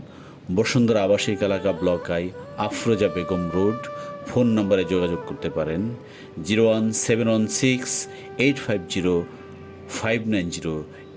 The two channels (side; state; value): both; identical; correlation 1.00